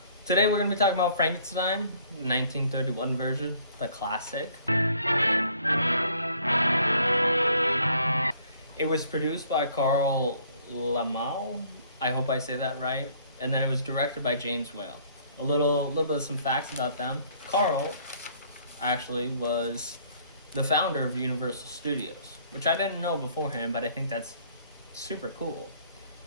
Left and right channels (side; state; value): both; inverted; correlation -0.60